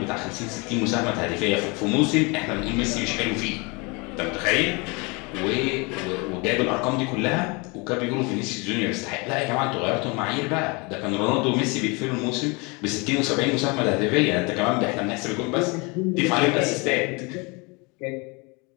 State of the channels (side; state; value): right; quieter; 28.5 dB